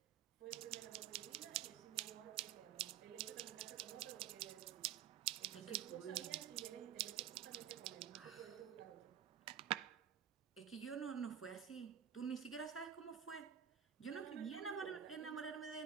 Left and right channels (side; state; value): left; quieter; 9.6 dB